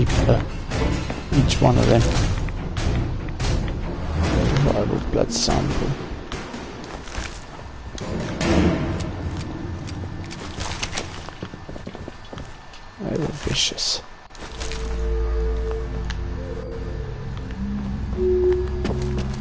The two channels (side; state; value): both; identical; correlation 1.00